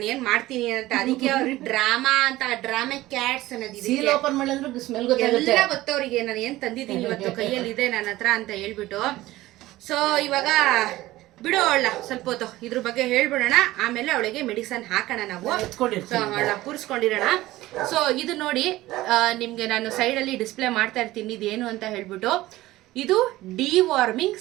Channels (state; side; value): quieter; left; 17.1 dB